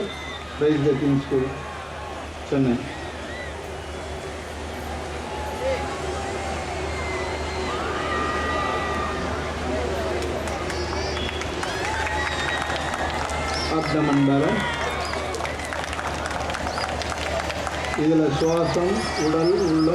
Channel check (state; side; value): identical; both; correlation 1.00